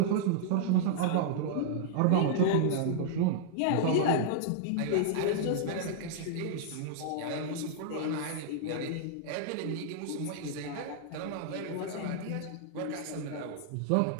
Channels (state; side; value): different; both; correlation -0.01